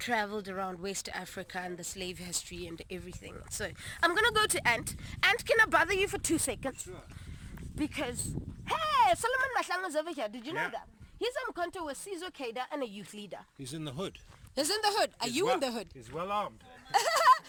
around West Africa and the slave history and everything. So I'm gonna go to Ant. Ant, can I bother you for 2 seconds? Sure. Because, hey, Solomon Mahlanga's over here, did you know that? He's on contact with Caesar Kada and a youth leader. He's in the hood. He's in the hood. Are you in the hood? He's well armed.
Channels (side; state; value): both; identical; correlation 1.00